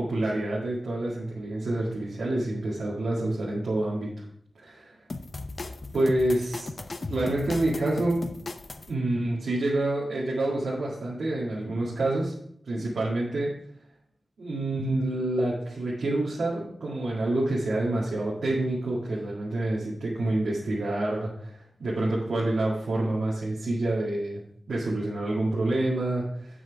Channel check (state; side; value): normal; both; correlation 0.92